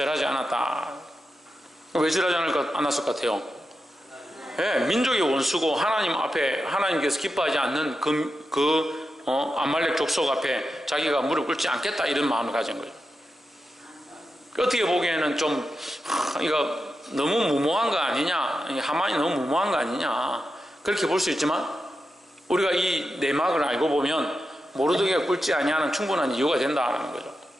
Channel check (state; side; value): normal; both; correlation 0.89